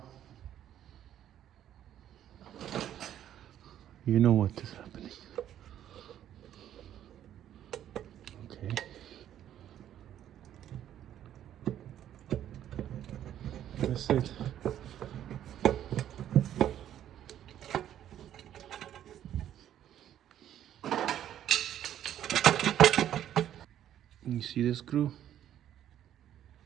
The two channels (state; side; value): quieter; left; 11.0 dB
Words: you know what is happening. Okay. That's it. You see the screw?